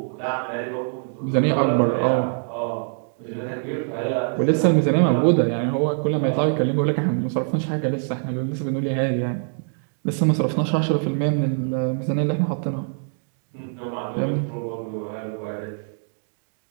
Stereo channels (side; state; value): left; silent; digital silence